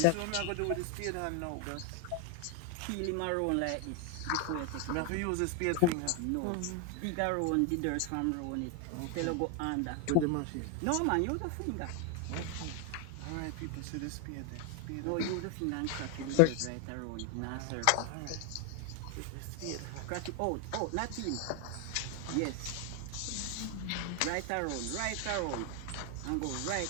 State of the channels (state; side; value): different; both; correlation 0.01